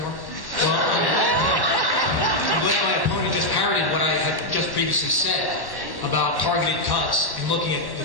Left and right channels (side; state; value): right; late; 1.1 ms